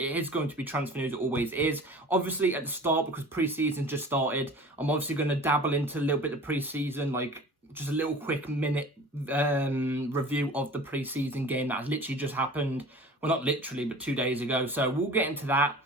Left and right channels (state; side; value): normal; both; correlation 0.41